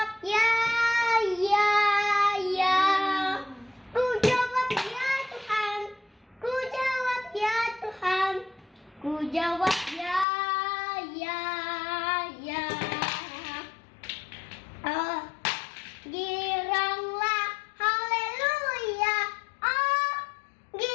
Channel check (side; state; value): right; drops out; at 10.2 s